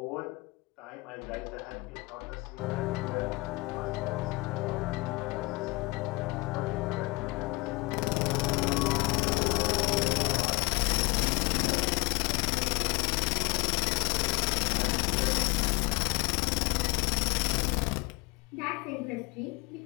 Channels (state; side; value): quieter; right; 24.7 dB